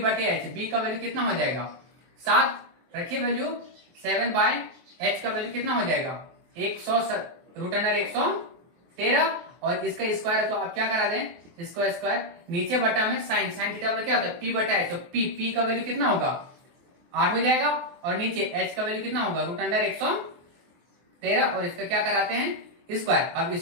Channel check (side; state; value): left; late; 23 ms